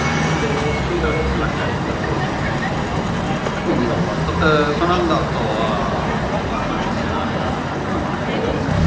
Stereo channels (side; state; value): both; identical; correlation 1.00